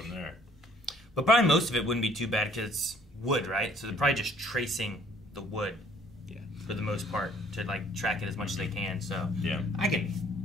there. But probably most of it wouldn't be too bad because it's wood, right? So they're probably just tracing the wood. Yeah. For the most part, to like track it as much as they can. So Yeah. I can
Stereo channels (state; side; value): normal; both; correlation 0.59